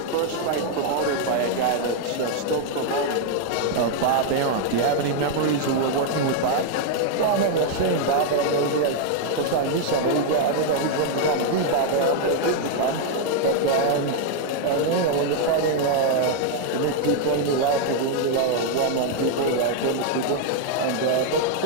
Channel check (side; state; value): both; different; correlation 0.00